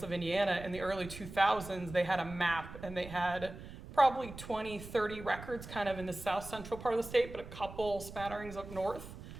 of Indiana in the early 2000s, they had a map and they had probably 20, 30 records kind of in the south central part of the state, but a couple spatterings up north.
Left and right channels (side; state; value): right; noise; rumble, 13 dB below the sound